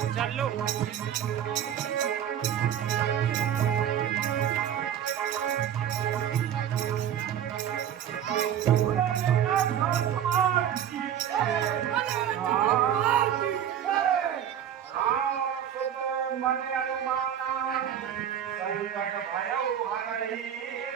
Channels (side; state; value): left; quieter; 9.8 dB